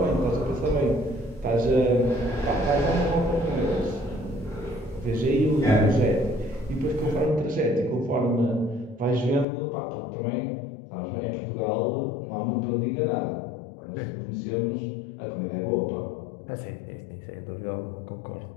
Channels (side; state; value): right; drops out; at 9.5 s